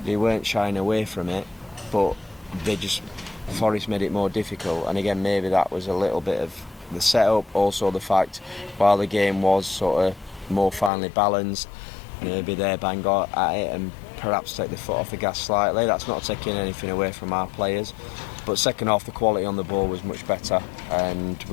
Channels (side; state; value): right; drops out; at 10.9 s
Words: they weren't shying away from it, but Forest made it more difficult, and again maybe that was a little bit of the setup, also the fact while the game was sort of more finely balanced, maybe they bang at it and perhaps take the foot off the gas slightly. That's not taking anything away from our players, but second half the quality on the ball was much better, and